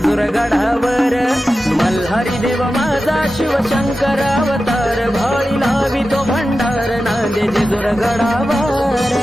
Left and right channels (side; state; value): both; normal; correlation 0.93